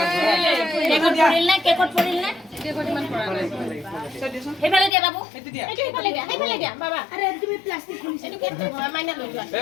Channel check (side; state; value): right; drops out; at 4.9 s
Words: কেকত পৰিল নে ইমান পৰা নাই সেইফালে দিয়া বাবু এইটো সেইফালে দিয়া বাবা আৰে তুমি প্লাষ্টিক খুলিছা এইটো কেক মাইনা লৈ যোৱা